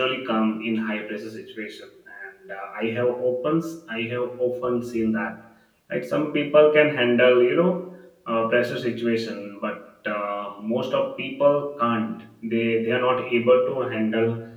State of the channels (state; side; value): identical; both; correlation 1.00